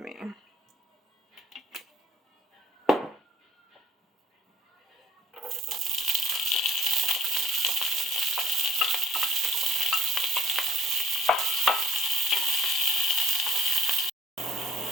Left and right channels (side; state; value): both; normal; correlation 0.54